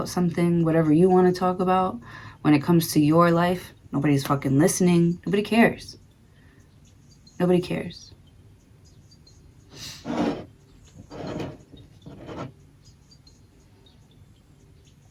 something, whatever you want to talk about, when it comes to your life, nobody's fucking listening. Nobody cares. Nobody cares.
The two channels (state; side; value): identical; both; correlation 1.00